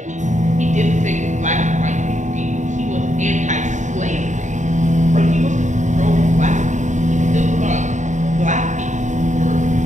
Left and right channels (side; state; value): left; late; 0.35 ms